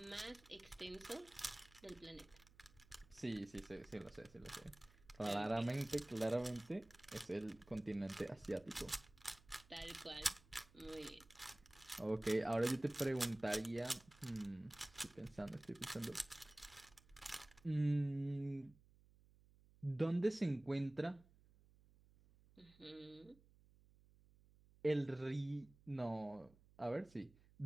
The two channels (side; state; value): right; noise; hum, 26 dB below the sound